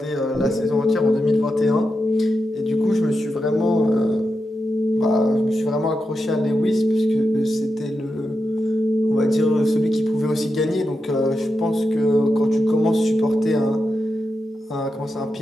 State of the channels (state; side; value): normal; both; correlation 0.88